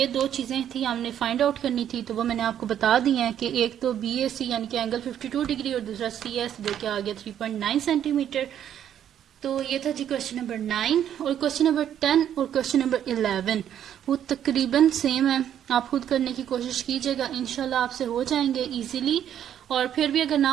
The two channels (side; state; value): left; quieter; 10.0 dB